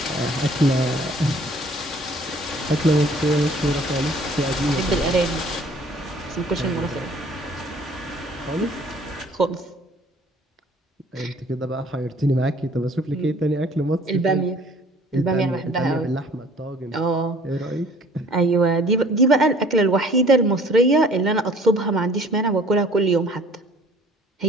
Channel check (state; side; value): normal; both; correlation 0.53